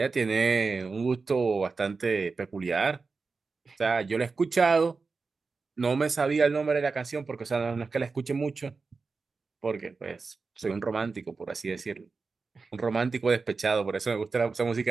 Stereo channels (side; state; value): left; quieter; 4.4 dB